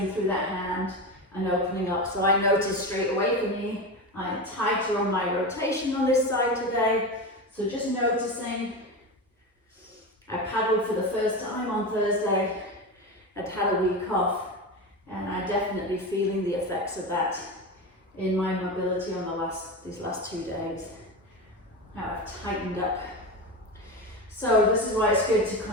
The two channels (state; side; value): normal; both; correlation 0.21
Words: through that hand and opening up. So I notice straight away for me, I'm tighter on my rotation on this side today. So just noticing. I paddled for the first time on Thursday. I'd had a week off, and I'm definitely feeling the effects of that in my mobility on these last 2 days. How I've tightened up. So this is why it's good to